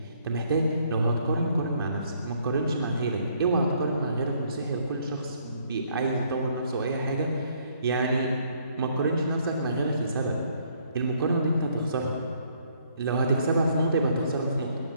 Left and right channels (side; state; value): both; inverted; correlation -0.66